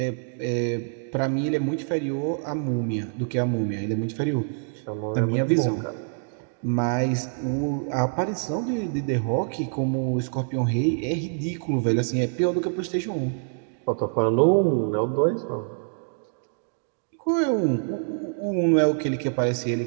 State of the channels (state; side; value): silent; left; digital silence